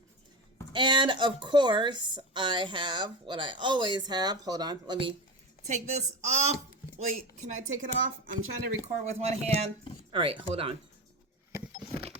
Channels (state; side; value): normal; both; correlation 0.22